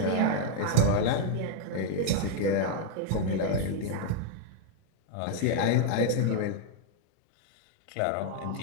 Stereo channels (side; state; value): both; different; correlation 0.00